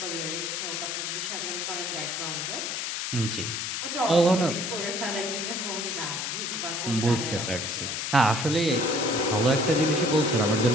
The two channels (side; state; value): left; noise; hiss, 3 dB below the sound